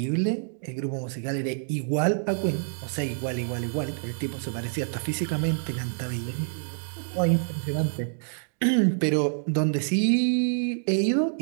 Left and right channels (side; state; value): left; silent; digital silence